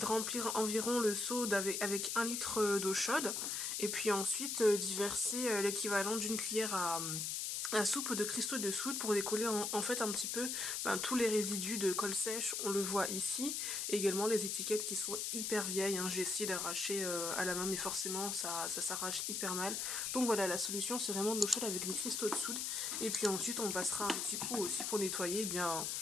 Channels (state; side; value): noise; left; hiss, 1 dB below the sound